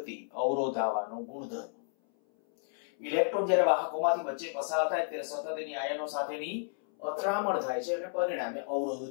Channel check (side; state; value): right; silent; 56 dB below the other